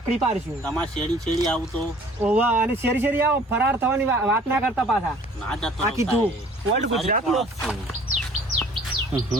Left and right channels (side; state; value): both; normal; correlation 0.52